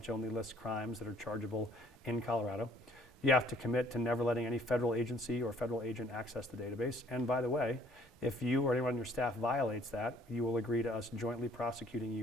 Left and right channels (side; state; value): both; normal; correlation 0.59